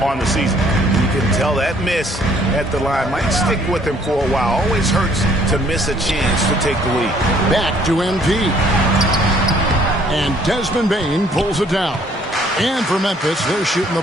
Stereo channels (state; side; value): normal; both; correlation 0.62